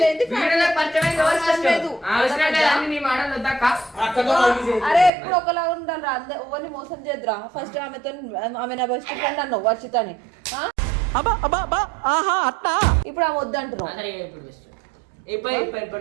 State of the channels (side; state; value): left; drops out; at 5.1 s